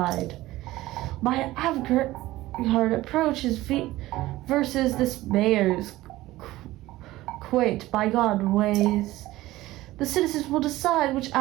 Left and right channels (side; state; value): left; quieter; 17.1 dB